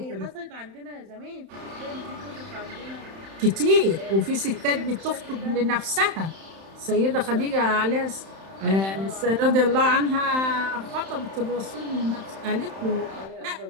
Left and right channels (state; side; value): late; left; 31 ms